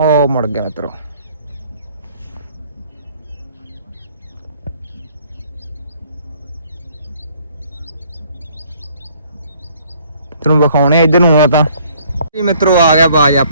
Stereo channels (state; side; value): inverted; both; correlation -0.60